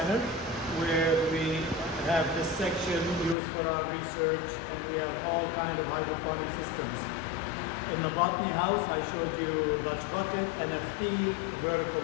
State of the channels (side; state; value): right; drops out; at 3.4 s